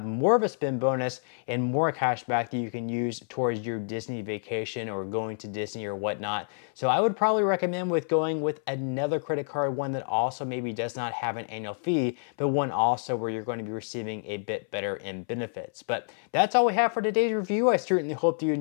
more of a spend bonus and more cash back that you can use towards your Disney vacation or going to Disney or whatnot. So I would probably recommend with going with another credit card, one that also maybe does not have an annual fee, but one also where you're going to be receiving a bit better in benefits. But that's all we have for today's review. I certainly hope that you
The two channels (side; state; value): right; silent; 59 dB below the other